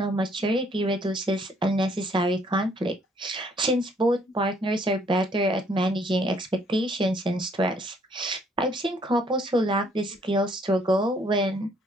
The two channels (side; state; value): both; normal; correlation 0.65